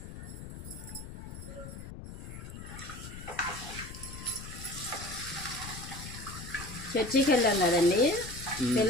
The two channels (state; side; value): noise; left; rumble, 11 dB below the sound